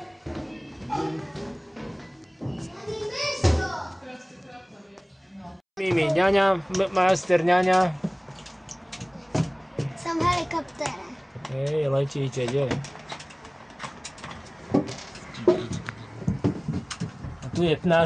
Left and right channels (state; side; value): identical; both; correlation 1.00